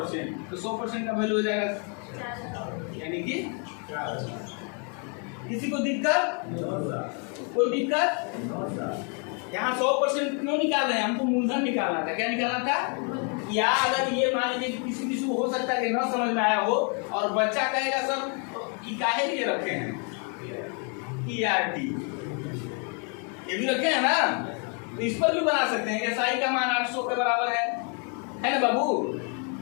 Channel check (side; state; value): right; quieter; 38.3 dB